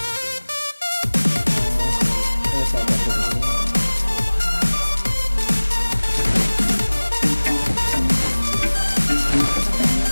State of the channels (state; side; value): inverted; both; correlation -1.00